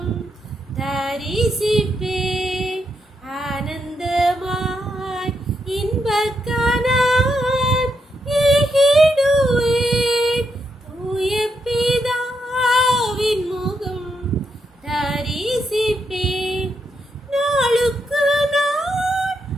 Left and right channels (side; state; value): both; normal; correlation 0.81